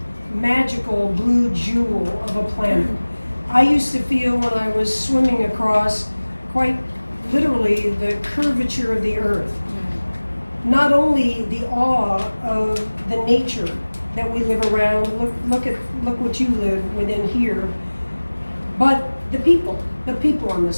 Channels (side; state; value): both; inverted; correlation -1.00